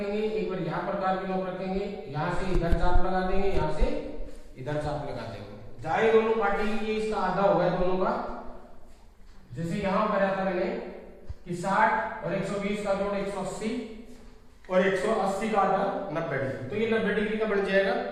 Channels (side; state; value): both; identical; correlation 1.00